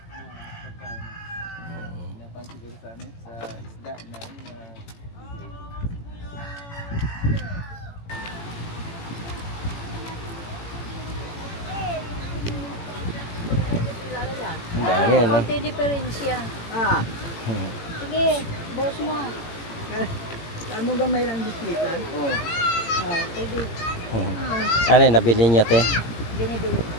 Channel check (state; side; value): late; right; 18 ms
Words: Napan siguro sa amin, sa isda na Ang dami, ano? Konti diferensya. Sige, boss mo. Saan mo gamay lang bislitan? Oo. Pwede. Ano yun, nabili niyo, te? Binibili.